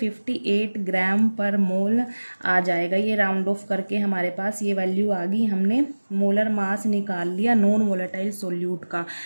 ग्राम पर मोल आ जाएगा। ये राउंड ऑफ करके हमारे पास ये वैल्यू आ गई। हमने मोलर मास निकाल लिया नॉन वोलेटाइल सोल्यूट का,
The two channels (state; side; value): inverted; both; correlation -1.00